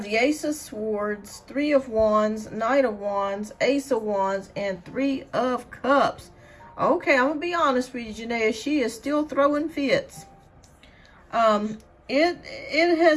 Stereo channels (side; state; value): both; identical; correlation 1.00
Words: the Ace of Swords, Three of Wands, Knight of Wands, Ace of Wands, and Three of Cups. Okay, I'm gonna be honest with you, Janaea. She is still throwing fits. It